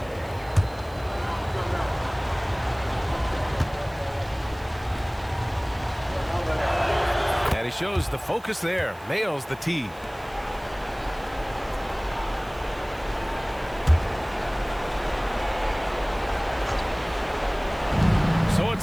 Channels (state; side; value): noise; right; hiss, 25 dB below the sound